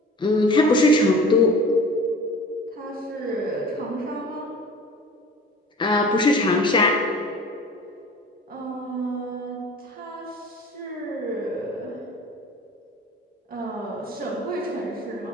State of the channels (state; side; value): normal; both; correlation 0.42